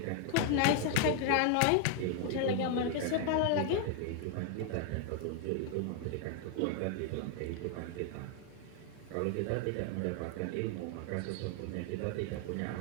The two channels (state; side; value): different; both; correlation 0.00